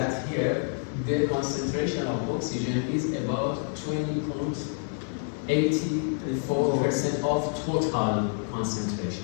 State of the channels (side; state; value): right; silent; 59 dB below the other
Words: here the concentration of oxygen is about 20.84% of total